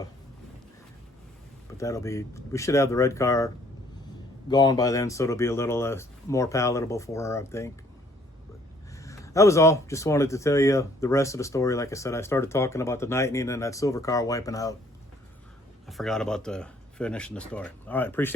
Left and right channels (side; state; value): both; normal; correlation 0.61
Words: we should have the red car gone by then, so it'll be a little more palatable for her, I think. But that was all. Just wanted to tell you the rest of the story. Like I said, I started talking about the Lightning and that silver car wiping out. I forgot about finishing the story. All right,